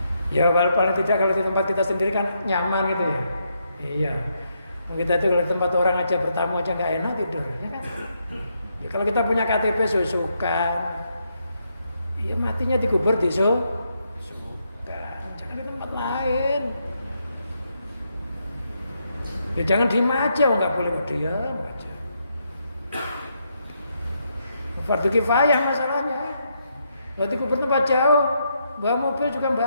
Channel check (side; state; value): both; inverted; correlation -0.78